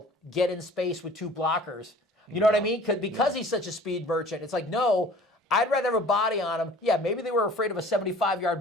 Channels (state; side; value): normal; both; correlation 0.48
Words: get in space with 2 blockers. You know what I mean? Because he's such a speed merchant. It's like, no, I'd rather have a body on him. Yeah, maybe they were afraid of a